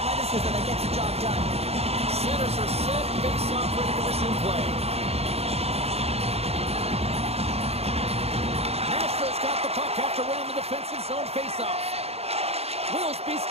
that gets the job done. Centers are set. Face-off ready to resume play. Nashville's got the puck after winning the defensive zone face-off. Wilsby's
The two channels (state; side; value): late; left; 0.30 ms